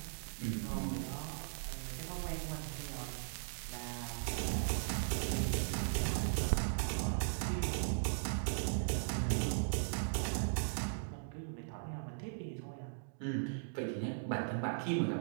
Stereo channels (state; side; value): silent; left; digital silence